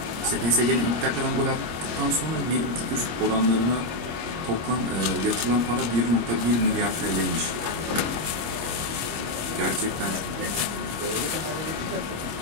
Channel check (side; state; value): left; late; 25 ms